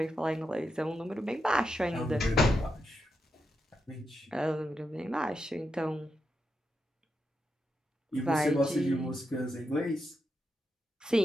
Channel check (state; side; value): normal; both; correlation 0.85